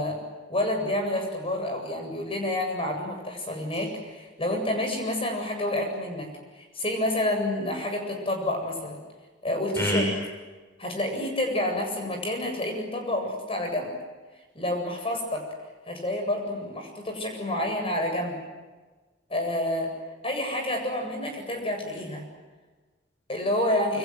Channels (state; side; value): normal; both; correlation 0.14